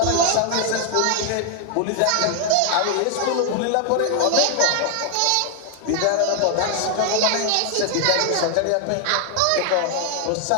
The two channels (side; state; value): both; different; correlation 0.00